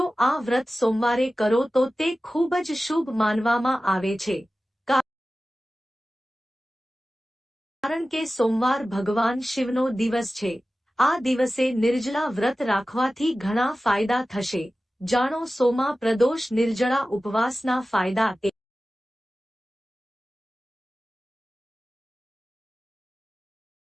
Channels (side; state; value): both; normal; correlation 0.96